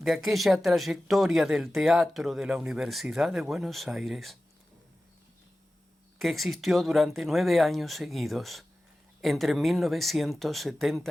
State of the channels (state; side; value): normal; both; correlation 0.95